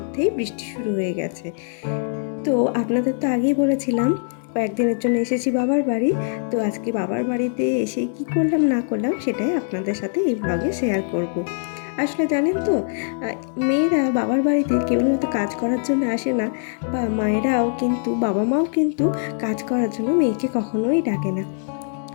বৃষ্টি শুরু হয়ে গেছে। তো আপনাদের তো আগেই বলেছিলাম কয়েকদিনের জন্য এসেছি বাবার বাড়ি। তো আজকে বাবার বাড়িতে এসে কি করলাম না করলাম সেটাই আপনাদের সাথে এই ব্লগে শেয়ার করব। আসলে জানেন তো, মেয়েরা বাবার বাড়িতে কেবলমাত্র কাজ করার জন্য আসে না, বা মায়েরাও কিন্তু বাবা মাও কিন্তু কাজ করার জন্য মেয়েকে কখনোই ডাকে না।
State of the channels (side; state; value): right; silent; digital silence